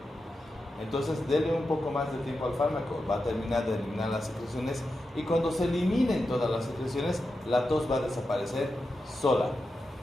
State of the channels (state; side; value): normal; both; correlation 0.89